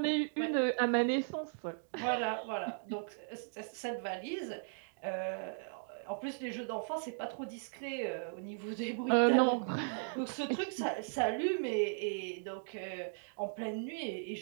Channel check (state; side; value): silent; left; digital silence